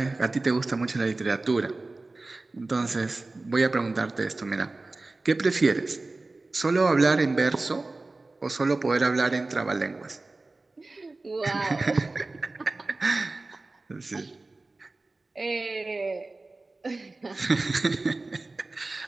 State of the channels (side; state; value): left; quieter; 3.3 dB